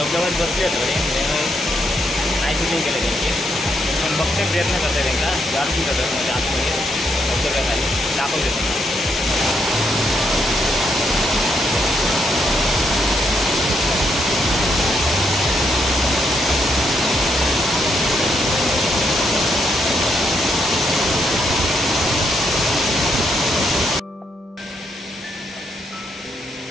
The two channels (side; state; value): both; normal; correlation 0.77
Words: बसले थोडे नाही शूटिंग केलं त्यांची. पण बघते प्रयत्न करते त्यांना जास्ती करतात म्हणजे आतमध्ये धबधब्याखाली दाखवते त्यांना.